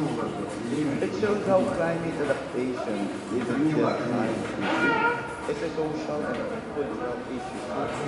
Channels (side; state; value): both; identical; correlation 1.00